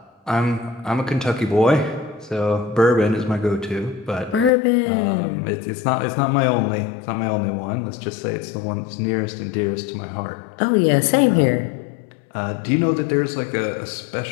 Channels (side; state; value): right; drops out; at 4.5 s